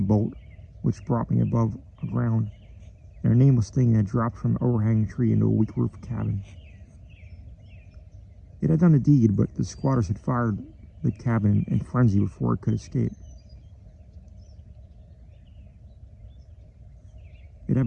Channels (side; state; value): both; identical; correlation 1.00